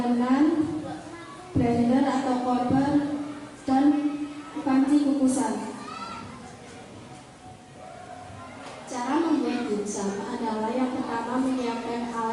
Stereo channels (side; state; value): both; identical; correlation 1.00